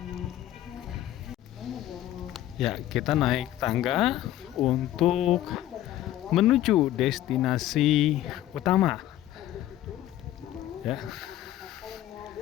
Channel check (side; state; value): right; quieter; 13.5 dB